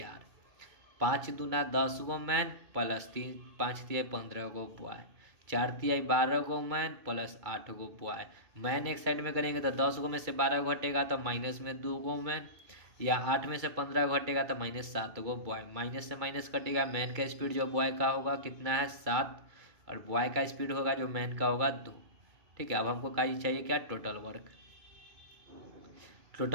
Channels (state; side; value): late; left; 2.2 ms